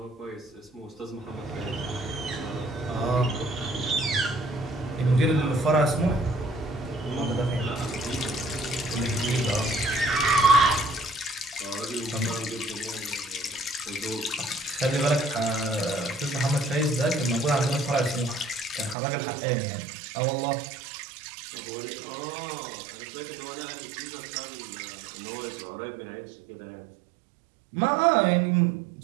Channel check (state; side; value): drops out; left; at 18.9 s